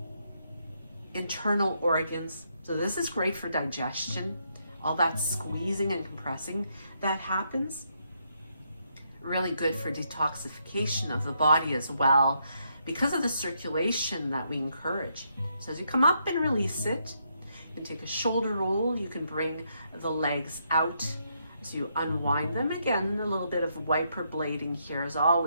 internal organs. So this is great for digestion. All that squeezing and compressing that happens. Really good for detoxification of the body as well, because of the circulation that we encourage. So as you come up and release it, you can take a shoulder roll. You can bring the legs out as you unwind them. Again, a little bit of wiper blading here is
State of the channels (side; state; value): both; inverted; correlation -0.77